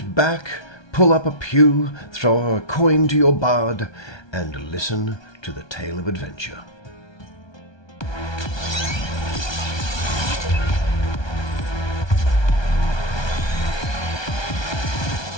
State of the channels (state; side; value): late; right; 1.2 ms